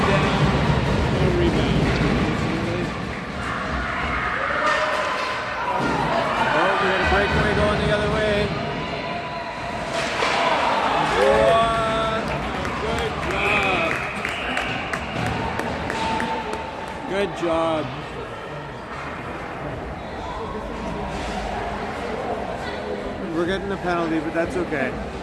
down. No rebound. Oh, we got a breakaway going the other way. Good job. We're getting a penalty, but that's okay.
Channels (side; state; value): both; identical; correlation 1.00